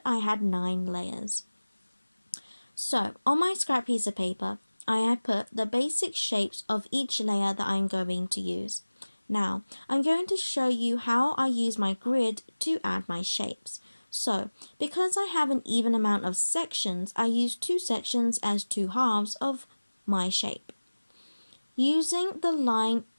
I had 9 layers. So, on my scrap piece of paper, I have put the basic shapes of each layer that I'm going to use. Now, I'm going to show you how I use my grid to add my shapes. So, because I have an even amount of sections, I use 2 sections as 2 halves of my shape, using the line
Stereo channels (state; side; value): inverted; both; correlation -1.00